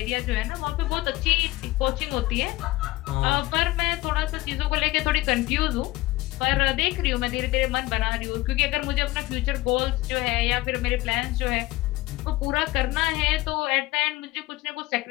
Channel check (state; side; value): quieter; right; 18.9 dB